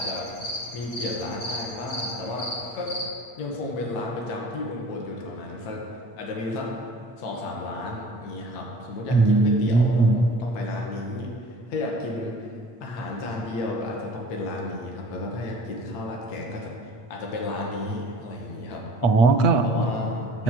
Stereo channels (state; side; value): late; right; 8.6 ms